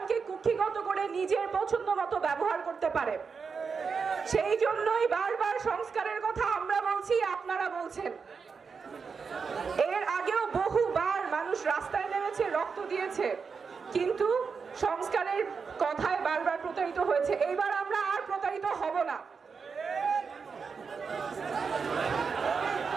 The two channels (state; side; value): quieter; left; 5.5 dB